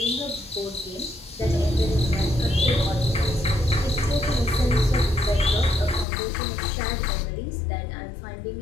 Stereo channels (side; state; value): right; drops out; at 6.1 s